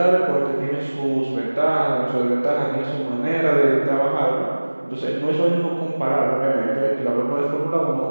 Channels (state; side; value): inverted; both; correlation -1.00